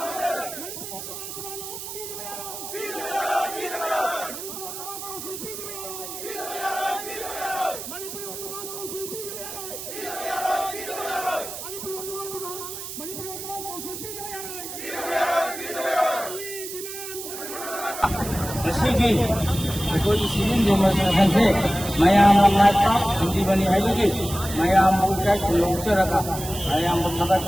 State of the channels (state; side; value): noise; right; hiss, 9 dB below the sound